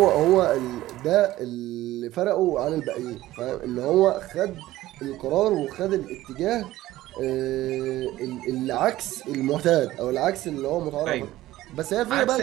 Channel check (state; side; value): quieter; left; 15.8 dB